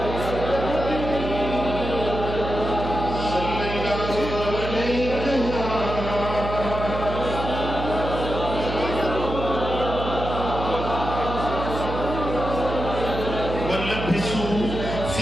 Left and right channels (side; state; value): right; noise; hum, 5 dB below the sound